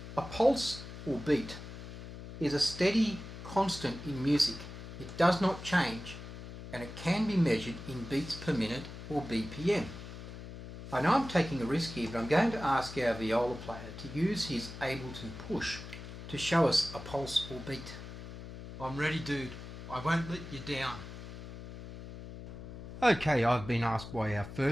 a pulse or beat is a steady constant in music. It does not change, and it can be measured in beats per minute or BPM. I know I'm taking a risk here, but I'm going to ask our viola player to use his Ableton push to show us a pulse or beat. I'm ready, dude. I won't let you down. Okay, I've been asked by our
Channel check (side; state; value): left; noise; hum, 11 dB below the sound